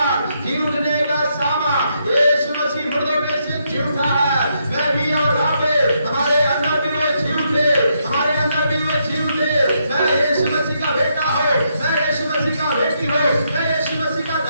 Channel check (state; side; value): inverted; both; correlation -0.77